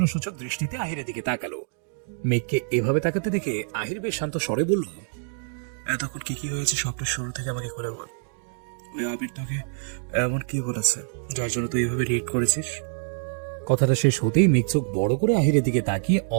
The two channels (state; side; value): silent; left; digital silence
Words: দৃষ্টিতে আহিরের দিকে তাকালো। মেঘকে এভাবে তাকাতে দেখে আহির বেশ শান্ত স্বরে বলল, এতক্ষণ কি কি হয়েছে সবটা শুরু থেকে আমাকে খুলে বল। ওই আবির তোকে এমন কি বলেছে যার জন্য তুই এইভাবে রিয়েক্ট করেছিস? কথাটা শেষ হতেই মেঘ চোখ বড় করে আহিরের দিকে তাকিয়ে